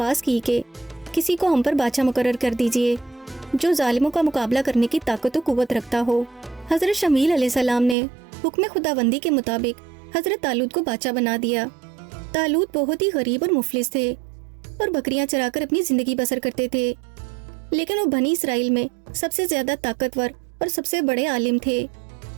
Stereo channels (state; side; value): drops out; left; at 8.0 s